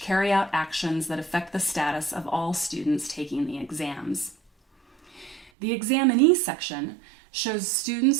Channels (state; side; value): drops out; left; at 5.5 s